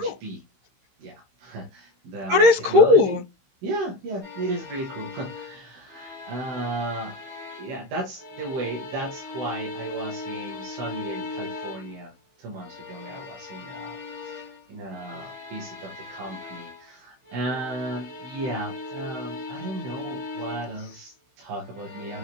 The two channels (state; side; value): late; left; 16 ms